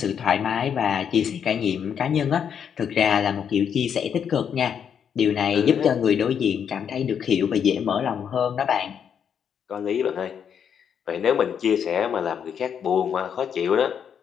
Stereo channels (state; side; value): quieter; right; 7.9 dB